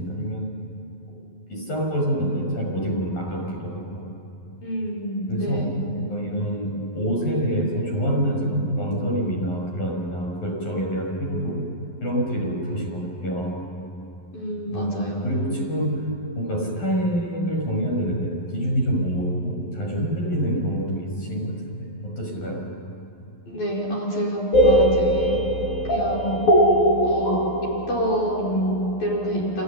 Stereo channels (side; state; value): right; late; 11 ms